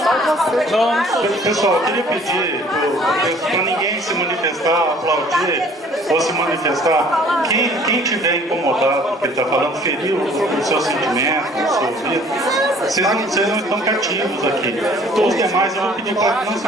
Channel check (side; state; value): both; normal; correlation 0.54